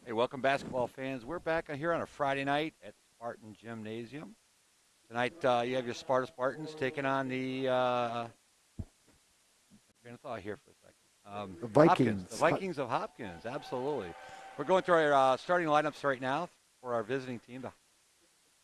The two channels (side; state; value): both; identical; correlation 1.00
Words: Hey, welcome, basketball fans. We're back here on a Friday night at Spartan Gymnasium. Tonight, you have your Spartans taking on the train of thought here for a second. The Hopkins, the Vikings. Vikings of Hopkins. Absolutely. We're going through our starting lineups right now for our visiting team, the